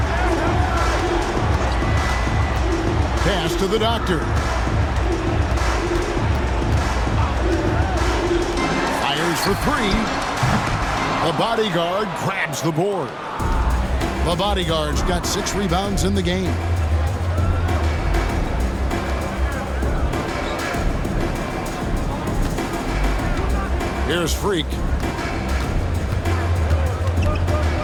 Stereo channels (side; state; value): both; identical; correlation 1.00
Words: Pass to the Doctor. Fires for 3. The bodyguard grabs the board. The bodyguard's got 6 rebounds in the game. Here's Freak.